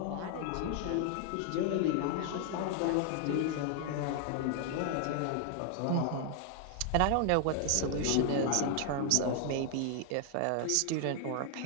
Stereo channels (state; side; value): different; both; correlation 0.00